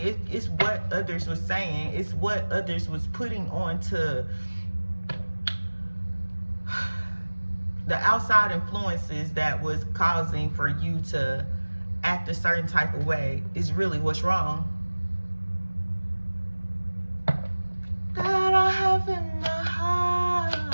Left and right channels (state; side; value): inverted; both; correlation -1.00